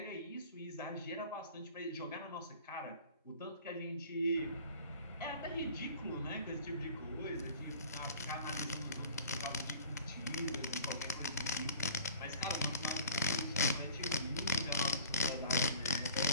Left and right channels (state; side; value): inverted; both; correlation -0.45